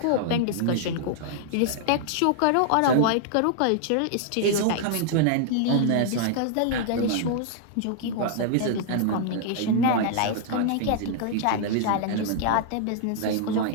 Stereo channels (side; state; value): both; different; correlation -0.01